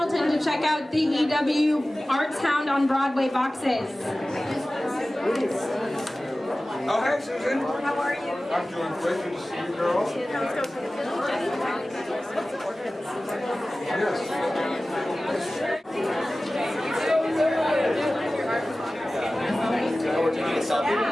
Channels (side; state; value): both; normal; correlation 0.97